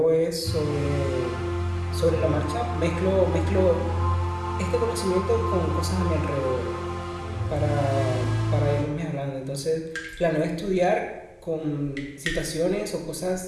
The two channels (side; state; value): both; identical; correlation 1.00